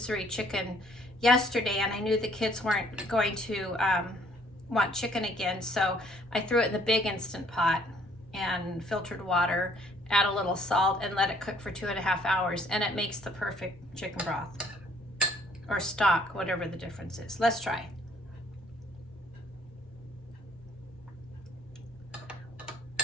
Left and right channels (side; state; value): both; normal; correlation 0.62